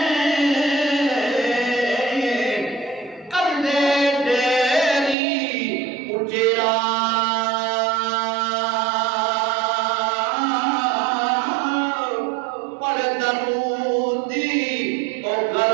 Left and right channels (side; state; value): left; drops out; at 5.2 s